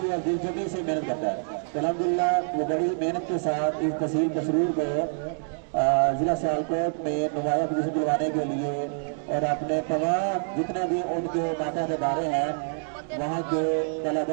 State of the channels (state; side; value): silent; left; digital silence